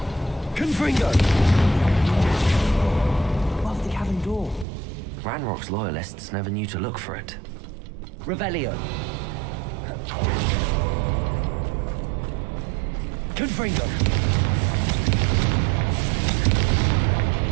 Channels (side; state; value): left; drops out; at 4.7 s